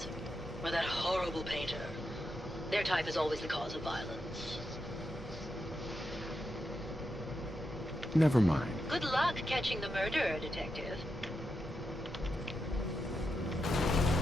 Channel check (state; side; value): normal; both; correlation 0.86